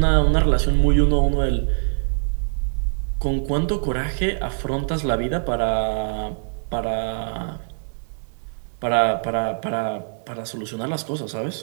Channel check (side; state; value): left; silent; 60 dB below the other